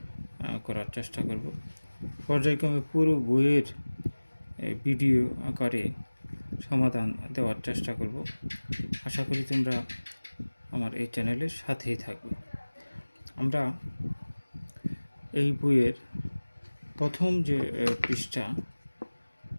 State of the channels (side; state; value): both; inverted; correlation -1.00